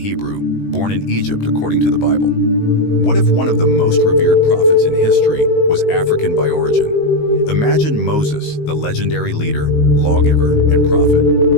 born in Egypt according to the Bible. What if one of the most revered prophets in history was African by origin? Imagine Moses, the legendary leader, lawgiver, and prophet,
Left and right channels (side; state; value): right; late; 19 ms